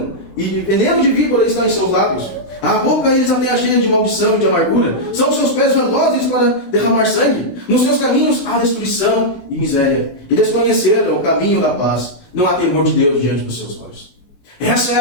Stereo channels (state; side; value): late; right; 16 ms